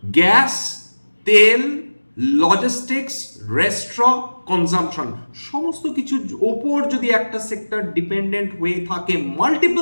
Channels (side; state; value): both; inverted; correlation -1.00